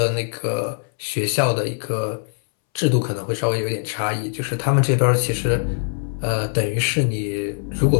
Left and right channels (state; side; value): silent; right; 64 dB below the other